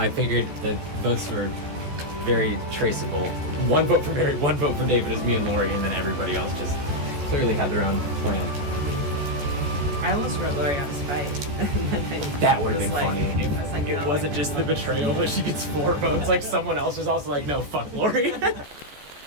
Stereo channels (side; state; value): left; late; 14 ms